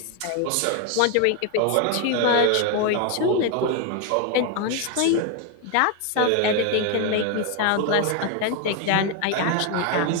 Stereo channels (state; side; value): different; both; correlation 0.01